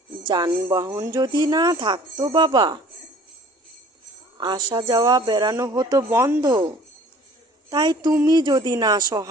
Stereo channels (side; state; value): both; normal; correlation 0.50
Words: যানবাহন যদি না থাকতো বাবা, আসা যাওয়া বেড়ানো হতো বন্ধ। তাই তুমি যদি না